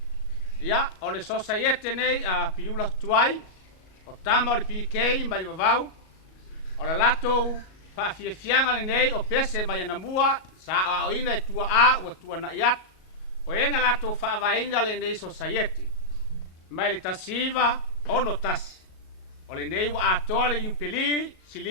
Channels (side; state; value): right; late; 37 ms